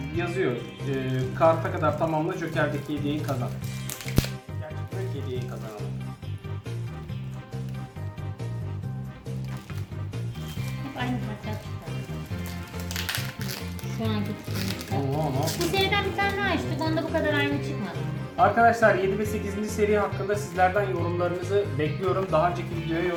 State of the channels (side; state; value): both; identical; correlation 1.00